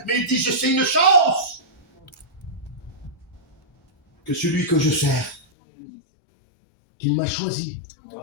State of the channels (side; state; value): right; drops out; at 5.4 s